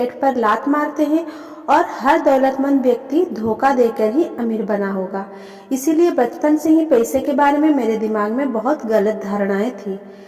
पर लात मारते हैं और हर दौलतमंद व्यक्ति धोखा देकर ही अमीर बना होगा। इसीलिए बचपन से ही पैसे के बारे में मेरे दिमाग में बहुत गलत धारणाएं थी।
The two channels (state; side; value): identical; both; correlation 1.00